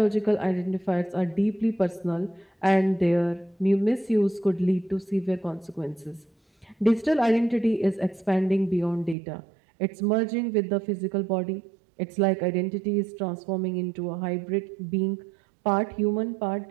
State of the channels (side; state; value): left; drops out; at 9.2 s